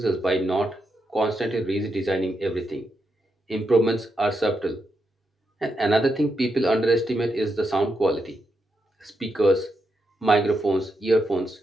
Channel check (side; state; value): both; normal; correlation 0.83